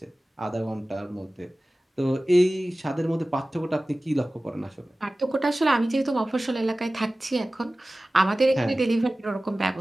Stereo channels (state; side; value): normal; both; correlation 0.97